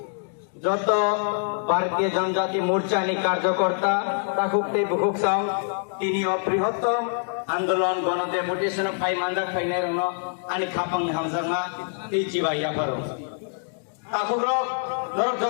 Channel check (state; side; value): silent; right; 60 dB below the other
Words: যত ভারতীয় জনজাতি মোর্চানি কার্যকর্তা তাকুকতে বুকুকসাং তিনি বৃহত্তম আন্দোলন গণ ডেপুটেশন ফাই মানজাক ফাইনাই রং আনি খাপাং হামজাংমা তি জিবাইয়া পারো তাকুরক নরক